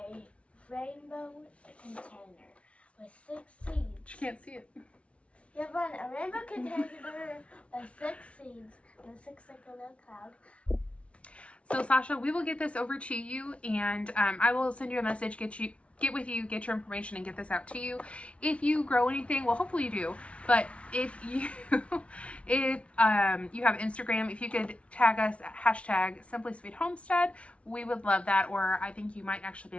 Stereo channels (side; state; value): right; late; 0.062 ms